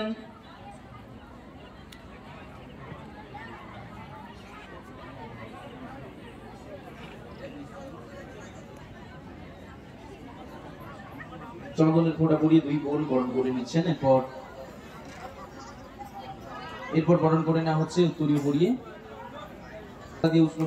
চন্দনের ফোঁটা পরিয়ে দুই বোন বরণ করে নিচ্ছেন। এরপর বরণ করে নেওয়া হচ্ছে উত্তরীয় পরিয়ে, দিয়ে উষ্ণ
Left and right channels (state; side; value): identical; both; correlation 1.00